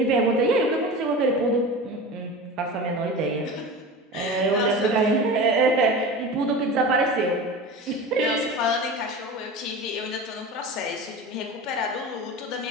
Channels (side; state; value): both; normal; correlation 0.31